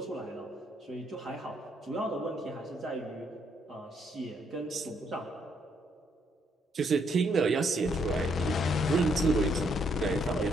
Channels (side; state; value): both; normal; correlation 0.72